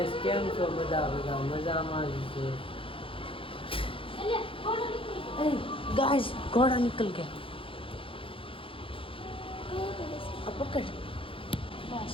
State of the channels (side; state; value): right; late; 0.26 ms